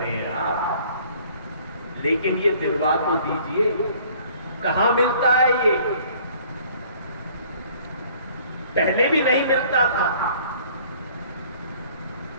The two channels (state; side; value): inverted; both; correlation -0.55